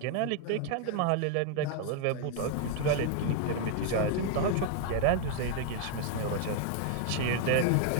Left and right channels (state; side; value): different; both; correlation 0.00